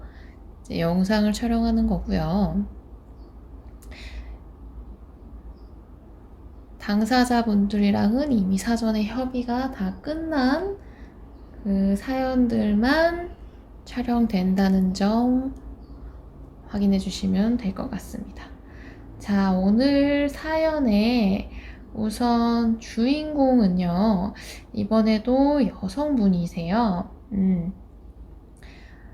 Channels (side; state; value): both; identical; correlation 1.00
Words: 이제 영상을 촬영하는 거고요. 당사자분들이랑은 이미 사전에 협의가 다 끝난 그 사연들만 촬영된다는 점 확인해 주시면 될 것 같습니다. 자, 오늘 사연의 우선 주인공은요, 이번에도 여성분이세요.